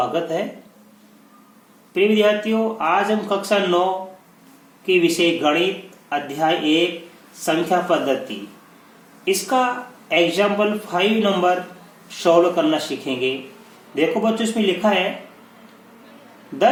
है। प्रिय विद्यार्थियों, आज हम कक्षा 9 के विषय गणित अध्याय 1 संख्या पद्धति इसका एग्जाम्पल 5 नंबर सॉल्व करना सीखेंगे। देखो बच्चों, इसमें लिखा है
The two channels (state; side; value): identical; both; correlation 1.00